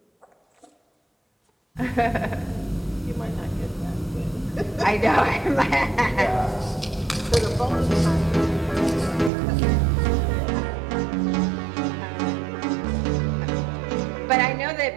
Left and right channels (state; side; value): drops out; left; at 9.3 s